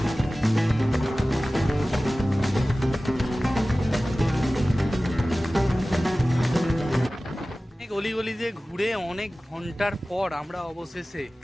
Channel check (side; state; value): both; normal; correlation 0.97